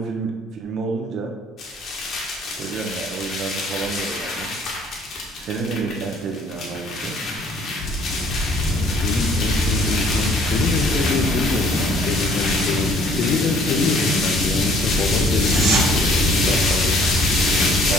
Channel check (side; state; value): both; normal; correlation 0.59